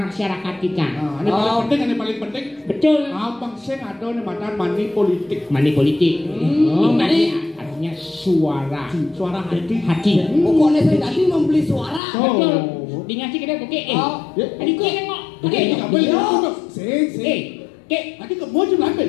kita. Ini paling penting. Betul. Abang sing ada nih mantan money politik. Artinya suara hati. Pokoknya saya tadi membeli suara. Betul. Dingasih kita oke. Tadi kau nengok. Oke. Tadi kamu aja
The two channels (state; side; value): drops out; right; at 12.0 s